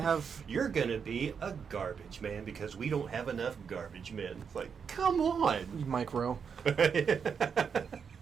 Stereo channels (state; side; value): quieter; left; 6.5 dB